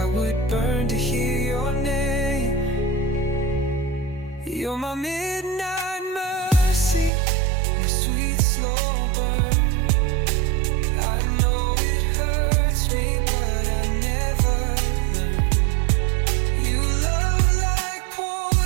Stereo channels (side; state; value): left; drops out; at 7.1 s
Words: would burn to hear your name. You're my midnight mercy, my sweet slow burn. I know it hurts me, but I never learn. You love like